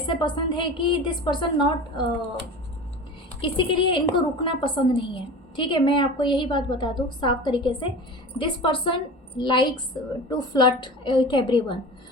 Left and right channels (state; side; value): normal; both; correlation 0.34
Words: पसंद है कि दिस पर्सन नॉट किसी के लिए इनको रुकना पसंद नहीं है। ठीक है, मैं आपको यही बात बता दूँ साफ तरीके से, this person likes to flirt with everyone.